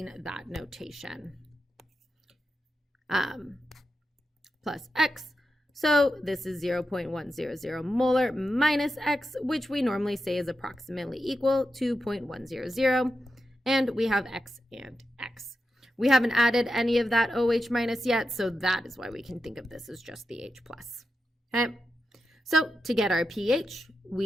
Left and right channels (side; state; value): both; normal; correlation 0.89